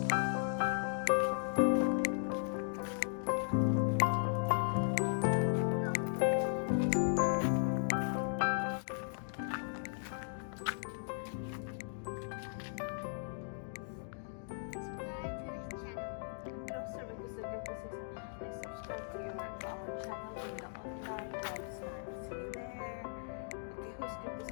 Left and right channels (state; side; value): silent; right; digital silence